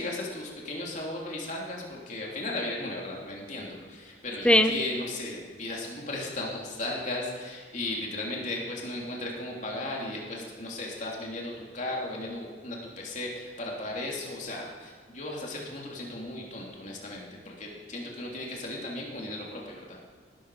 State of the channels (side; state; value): both; normal; correlation 0.44